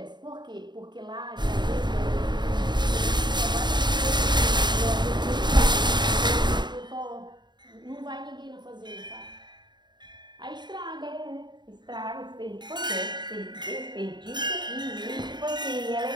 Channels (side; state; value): left; late; 0.21 ms